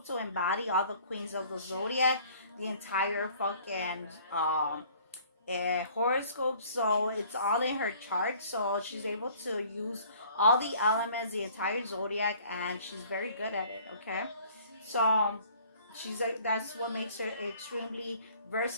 embody all the queens of the zodiac, the entire fucking horoscope. So it's all in her chart. So she's able to use all the elements, the entire zodiac, and she's very good at it. Okay, so she's like, that's what makes her extremely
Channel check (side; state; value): both; inverted; correlation -0.54